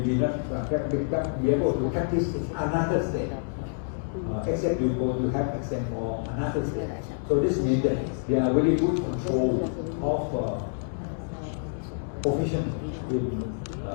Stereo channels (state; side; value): silent; right; digital silence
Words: be not be able to practice in another state, except you go to have access for another state. So this means that they are very good control of profession